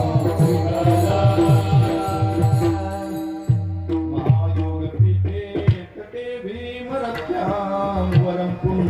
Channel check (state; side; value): identical; both; correlation 1.00